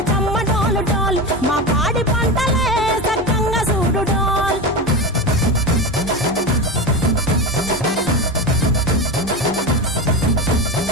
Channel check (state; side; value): normal; both; correlation 0.21